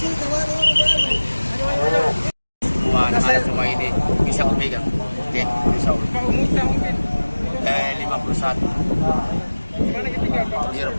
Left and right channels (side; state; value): both; inverted; correlation -1.00